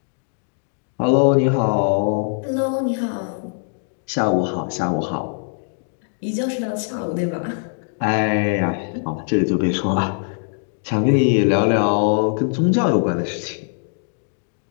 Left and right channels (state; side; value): silent; right; 61 dB below the other